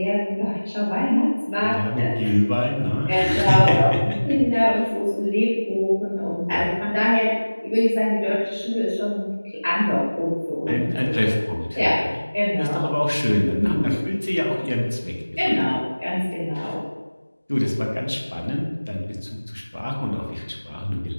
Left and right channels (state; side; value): inverted; both; correlation -1.00